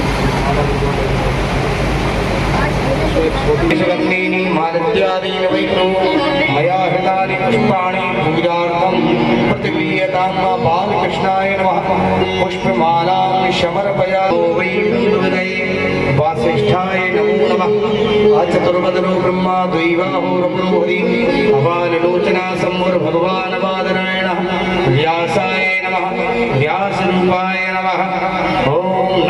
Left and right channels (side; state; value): both; identical; correlation 1.00